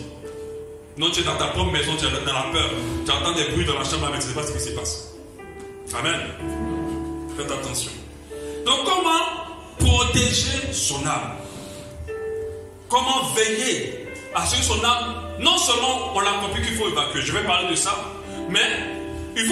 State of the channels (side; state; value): both; identical; correlation 1.00